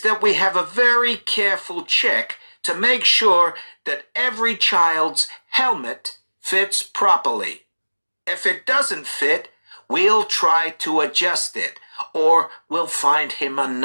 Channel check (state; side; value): inverted; both; correlation -1.00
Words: that we have a very careful check to make sure that every child's helmet fits properly. If it doesn't fit, we'll try to adjust it, or we'll find him